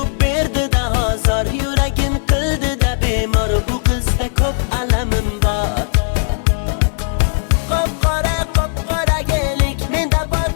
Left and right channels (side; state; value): right; silent; digital silence